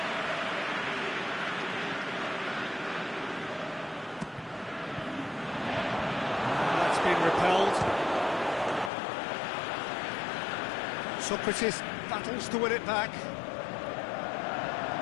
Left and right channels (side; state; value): right; drops out; at 8.9 s